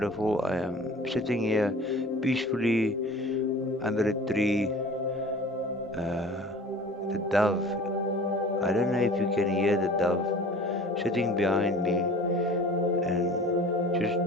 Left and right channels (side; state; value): both; normal; correlation 0.44